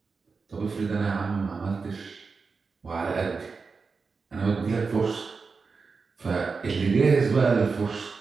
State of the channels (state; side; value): quieter; left; 4.7 dB